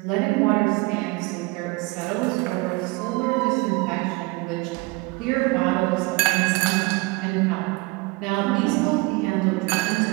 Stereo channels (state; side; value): quieter; left; 25.2 dB